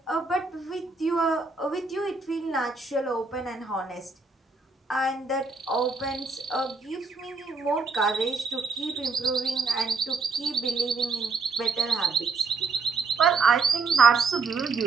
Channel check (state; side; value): quieter; left; 4.2 dB